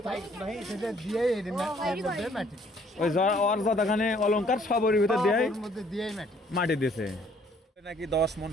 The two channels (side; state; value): both; normal; correlation 0.62